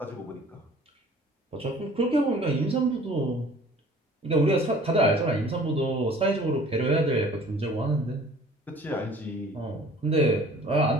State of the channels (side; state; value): both; normal; correlation 0.50